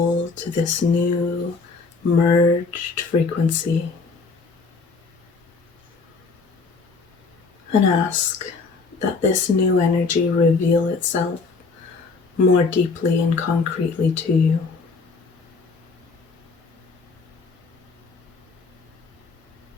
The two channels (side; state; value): right; quieter; 4.4 dB